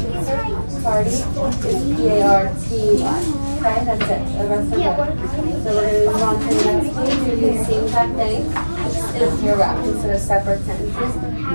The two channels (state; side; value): inverted; both; correlation -1.00